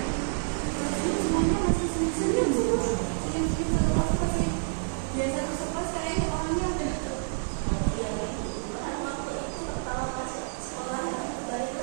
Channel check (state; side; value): silent; left; digital silence